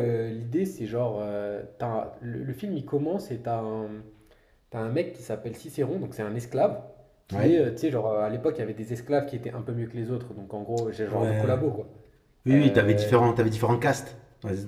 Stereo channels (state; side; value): identical; both; correlation 1.00